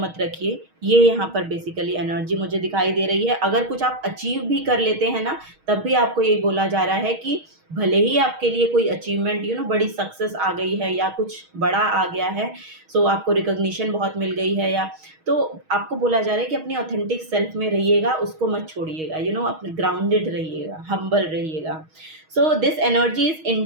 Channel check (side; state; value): left; late; 6.4 ms